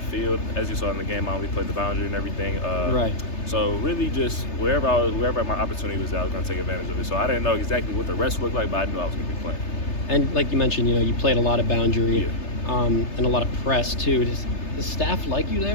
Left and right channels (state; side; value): late; right; 3.3 ms